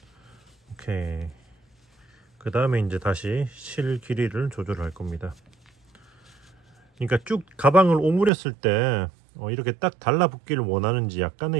오케이. 그 다음에 이제 다시 실 길이를 조절할 겁니다. 그러니까 쭉 가방을 오므렸을 때 이렇게 딱 달라붙기를 원하는지,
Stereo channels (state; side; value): drops out; left; at 8.3 s